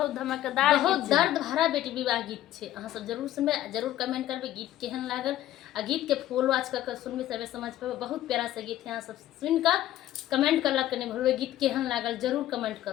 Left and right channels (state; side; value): quieter; right; 13.4 dB